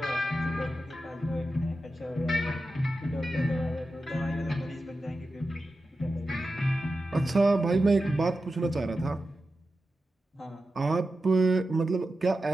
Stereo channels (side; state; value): both; normal; correlation 0.91